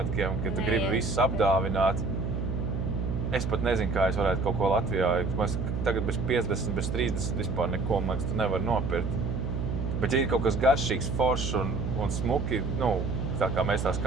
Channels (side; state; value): right; noise; hum, 2 dB below the sound